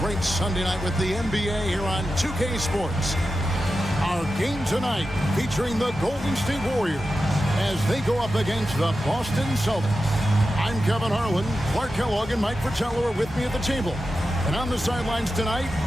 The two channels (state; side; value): normal; both; correlation 0.92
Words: great Sunday night with the NBA here on 2K Sports. Our game tonight featuring the Golden State Warriors as they go up against the Boston Celtics. I'm Kevin Harlan. Clark Kellogg and Mike Fratello are with me at the table. And on the sidelines tonight,